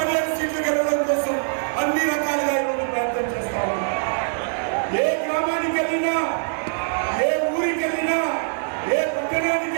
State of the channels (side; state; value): left; silent; digital silence